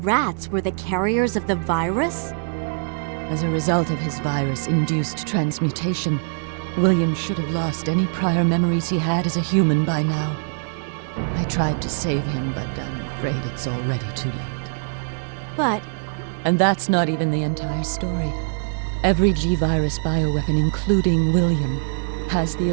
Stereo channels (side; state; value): left; silent; digital silence